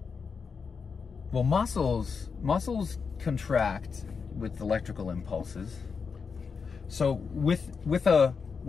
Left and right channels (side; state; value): right; quieter; 5.5 dB